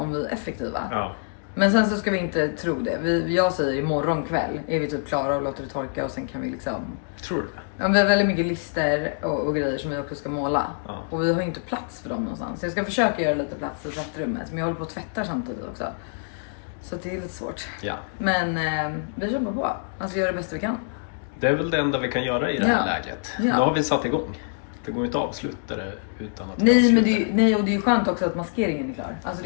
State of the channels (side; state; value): right; silent; digital silence